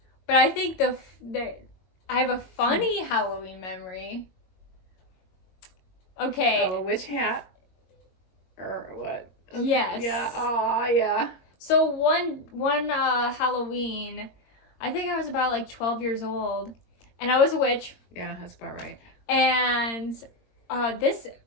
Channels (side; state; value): right; late; 22 ms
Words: But I think I have a funny Halloween memory. Okay. Oh, a witch hat? Or what? Yes. Yeah. Oh, yeah. So one Halloween, I think I was about like 12 years old, and I was a witch. Yeah, that's about right. And this